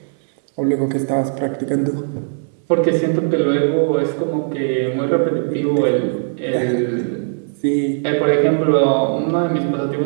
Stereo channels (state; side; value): silent; left; digital silence